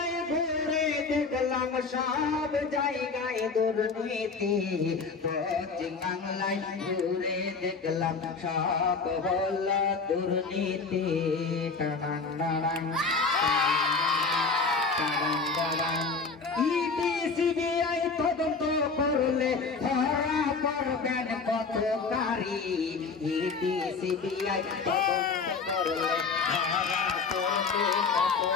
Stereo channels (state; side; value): quieter; right; 4.7 dB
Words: ঘুরে দেখলাম সব জায়গায় দুর্নীতি পশ্চিম বাংলায় ঘুরে দেখলাম সব হল দুর্নীতি সিবিআই তদন্ত করলে ধরা পড়বেন পত্রকারী সিবিআই তদন্ত করলে ধরা পড়বে